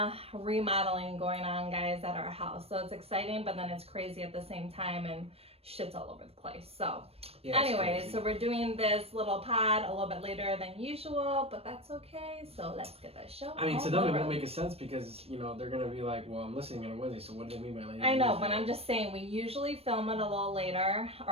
remodeling going on, guys, at our house. So it's exciting, but then it's crazy at the same time, and shit's all over the place. So, yeah, anyways, so we're doing this little pod a little bit later than usual, but that's okay. So let's get that show. I mean, to them it won't make a sense because, you know, they're going to be like, well, I'm listening on Wednesday, so what do they mean by later? I know, but I'm just saying we usually film it a little later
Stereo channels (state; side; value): late; left; 0.28 ms